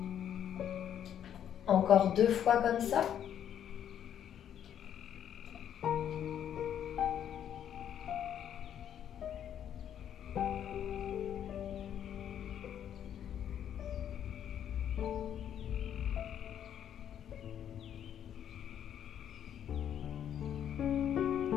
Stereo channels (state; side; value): quieter; right; 9.7 dB